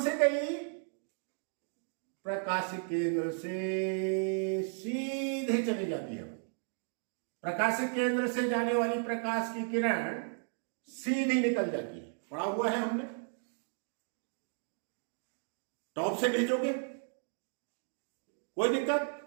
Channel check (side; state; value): left; silent; 55 dB below the other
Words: गई, प्रकाश केंद्र से सीधे चली जाती है। प्रकाश केंद्र से जाने वाली प्रकाश की किरण सीधी निकल जाती है, पढ़ा हुआ है हमने। टॉप से भेजोगे कोई दिक्कत।